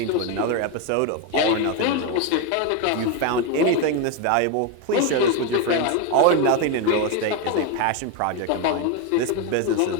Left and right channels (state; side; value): different; both; correlation 0.02